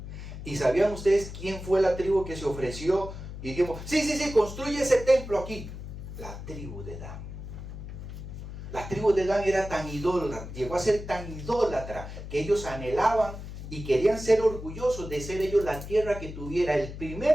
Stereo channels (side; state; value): left; noise; hum, 10 dB below the sound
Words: ¿Y sabían ustedes quién fue la tribu que se ofreció? Y dijimos, sí, construye ese templo aquí. La tribu de Dan. La tribu de Dan era tan idólatra, llegó a ser tan idólatra, que ellos anhelaban y querían ser orgullosos de ser ellos la tierra que tuviera el